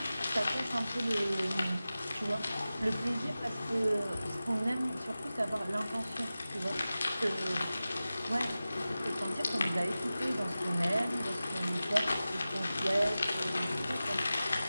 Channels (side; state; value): both; inverted; correlation -0.95